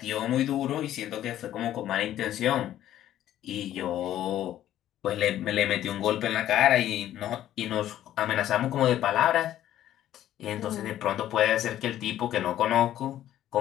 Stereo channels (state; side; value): quieter; right; 12.4 dB